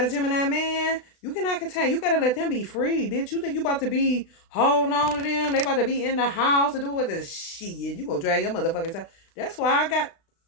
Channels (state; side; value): late; right; 36 ms